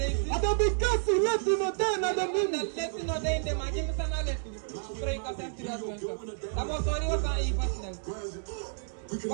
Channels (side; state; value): left; silent; digital silence